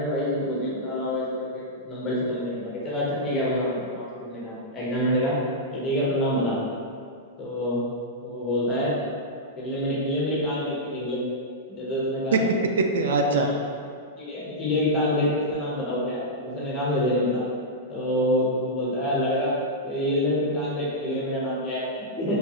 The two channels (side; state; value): both; normal; correlation -0.11